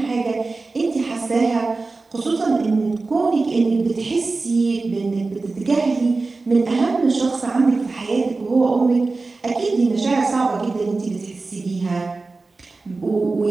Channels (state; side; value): quieter; left; 3.7 dB